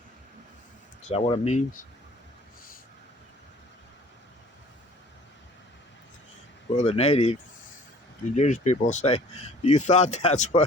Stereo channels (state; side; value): normal; both; correlation 0.50